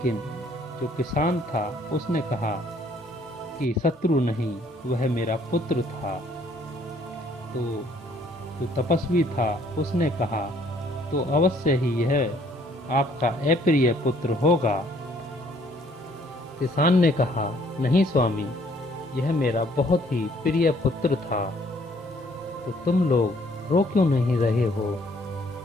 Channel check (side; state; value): both; normal; correlation 0.62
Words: जो किसान था उसने कहा कि शत्रु नहीं, वह मेरा पुत्र था। तो जो तपस्वी था उसने कहा तो अवश्य ही यह आपका अप्रिय पुत्र होगा। किसान ने कहा नहीं स्वामी, यह मेरा बहुत ही प्रिय पुत्र था। तो तुम लोग रो क्यों नहीं रहे हो?